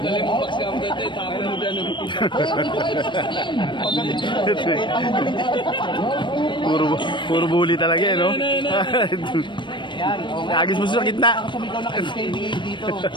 dali mo baksa ang dito, tapon mo dyan. Puro bully talaga eh, no? Agis mo sa gitna. Sumigaw na kay SKD dito.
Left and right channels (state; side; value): late; right; 0.23 ms